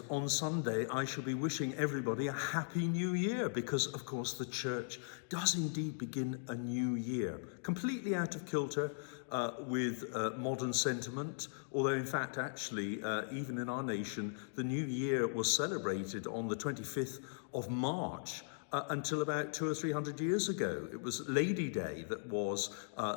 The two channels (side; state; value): right; silent; digital silence